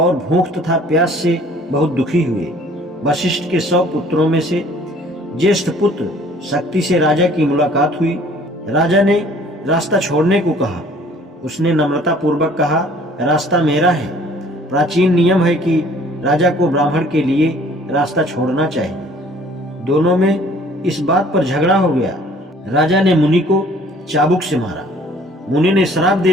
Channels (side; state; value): both; normal; correlation 0.55